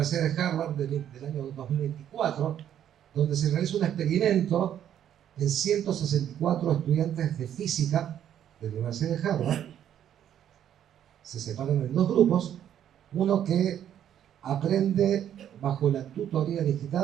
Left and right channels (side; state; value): left; quieter; 10.2 dB